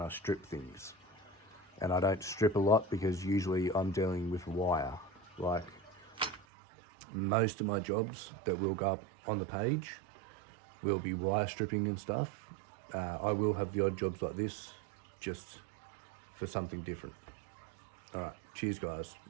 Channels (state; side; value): drops out; left; at 6.5 s